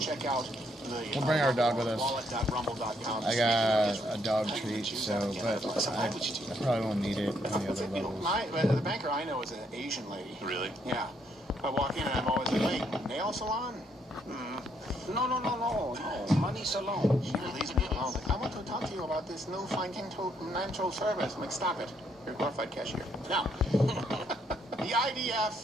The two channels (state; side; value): normal; both; correlation 0.72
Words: check out the We'll bring our dog with us. wallet.rumble.com. I got a dog treat, so, but I probably won't need it on the other levels. The banker I know is an Asian lady. Really? Yeah. I walk in and I'm always like, wait, nail salon? No, money salon. She leaves me alone. Like, I want to talk to you about this new financial service. I'm like, stop it. You're a glorified cashier. Now, the